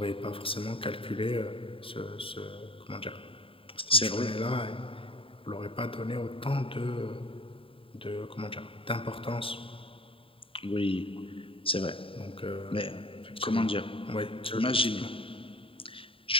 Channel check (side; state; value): right; late; 0.26 ms